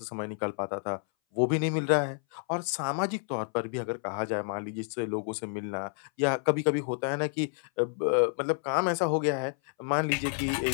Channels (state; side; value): silent; right; 58 dB below the other